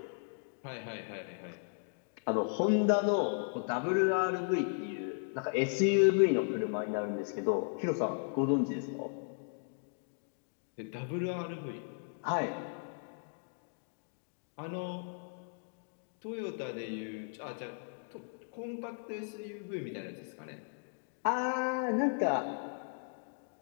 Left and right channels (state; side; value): silent; right; digital silence